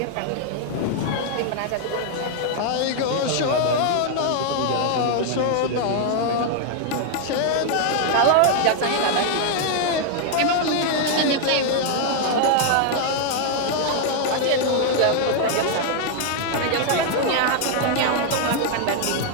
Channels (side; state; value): both; different; correlation 0.00